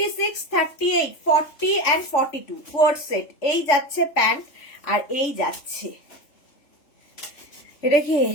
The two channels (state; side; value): late; right; 3.3 ms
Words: 38, 40 and 42 কোয়ার্ড সেট। এই যাচ্ছে প্যান্ট আর এই যাচ্ছে এটা কি